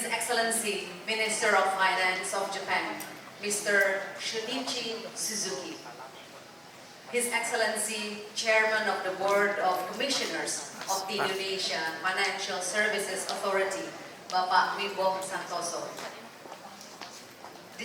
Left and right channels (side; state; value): both; identical; correlation 1.00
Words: Excellency, Minister of Finance of Japan, Mr. Shunichi Suzuki. His Excellency, Chairman of the Board of Commissioners of the Indonesia Financial Services Authority, Bapak Wimbo Santoso.